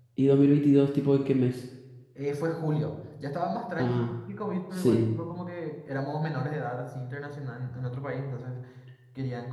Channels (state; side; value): identical; both; correlation 1.00